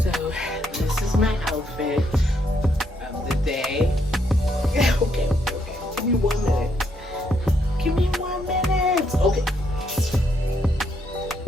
So this is my outfit of the day. Okay, give me 1 minute. Give me 1 minute. Okay.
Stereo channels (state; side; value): normal; both; correlation 0.75